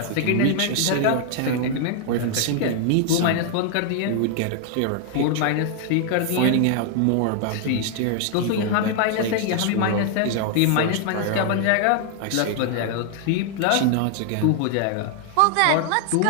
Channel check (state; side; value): different; both; correlation 0.00